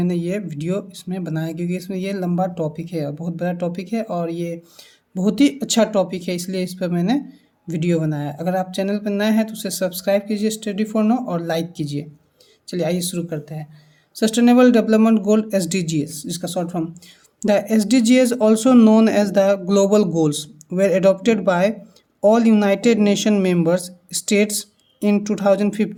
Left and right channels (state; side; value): identical; both; correlation 1.00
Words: ये वीडियो इसमें बनाया, क्योंकि इसमें ये लंबा टॉपिक है, बहुत बड़ा टॉपिक है और ये बहुत ही अच्छा टॉपिक है, इसलिए इस पर मैंने वीडियो बनाया है। अगर आप चैनल पर नए हैं तो उसे सब्सक्राइब कीजिए स्टडी फॉर नो और लाइक कीजिए। चलिए आइए शुरू करते हैं। सस्टेनेबल डेवलपमेंट गोल SDGs, जिसका short form the SDGs also known as the global goals were adopted by all United Nations members states in